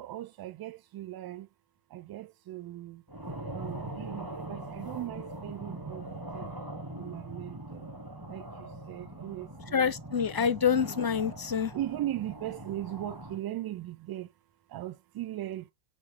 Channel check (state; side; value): late; left; 1.0 ms